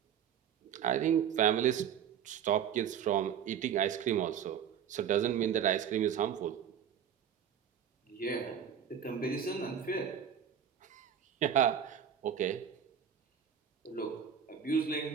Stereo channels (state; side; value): quieter; left; 8.6 dB